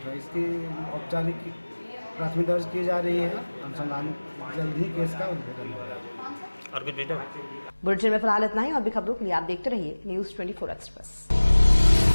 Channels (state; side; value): inverted; both; correlation -1.00